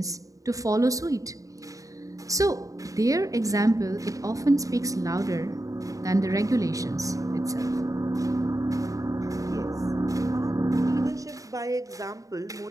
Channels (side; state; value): left; late; 0.16 ms